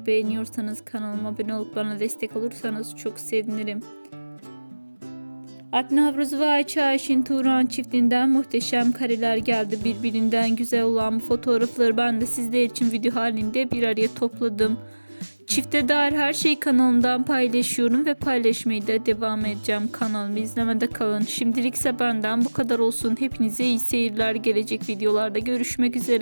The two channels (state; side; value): inverted; both; correlation -1.00